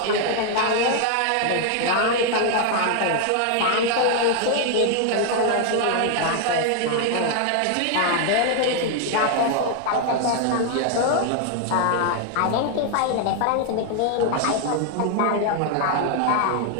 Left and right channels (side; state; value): both; different; correlation 0.00